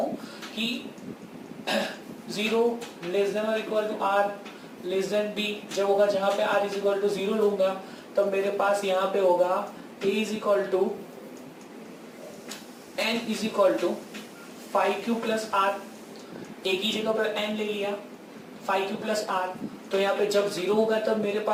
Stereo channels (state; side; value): identical; both; correlation 1.00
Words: कि 0 लेस देन और equal to r less than b जब होगा, जहां पे r इज इक्वल टू 0 लूंगा तब मेरे पास यहाँ पे होगा a is equal to n is equal to 5q plus r. एक ही जगह पर n ले लिया 5q प्लस r. तो यहाँ पे जब 0 होगा तब मेरे